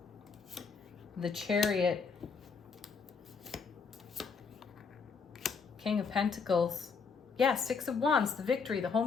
the Chariot, King of Pentacles. Yeah, Six of Wands, the victory, the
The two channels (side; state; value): right; quieter; 5.3 dB